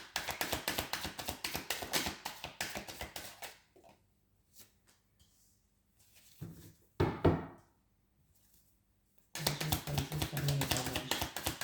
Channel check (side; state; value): both; identical; correlation 1.00